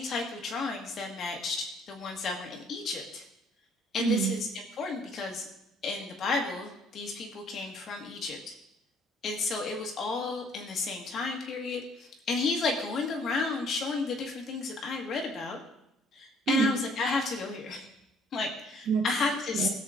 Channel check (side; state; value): both; normal; correlation 0.61